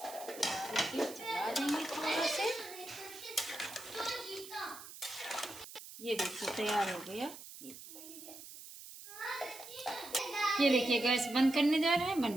डाल के चला देंगे थोड़ा से। ये देखिए तैयार हो गया। ये देखिए गैस बंद करने जा रहे हैं,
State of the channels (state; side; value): noise; right; hiss, 14 dB below the sound